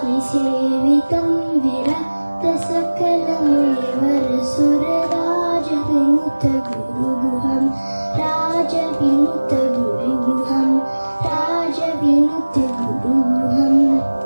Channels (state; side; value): inverted; both; correlation -1.00